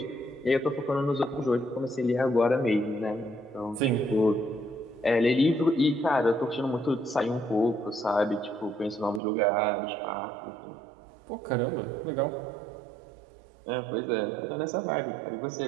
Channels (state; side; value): drops out; left; at 9.2 s